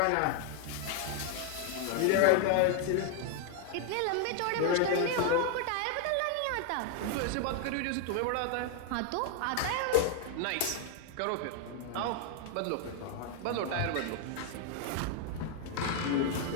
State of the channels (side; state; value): both; different; correlation 0.00